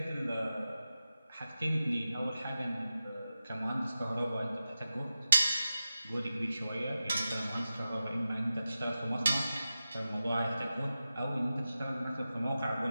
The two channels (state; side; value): inverted; both; correlation -0.93